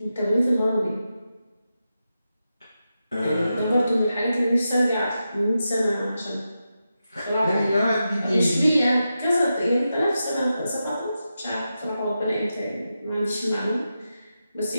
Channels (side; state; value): both; inverted; correlation -0.89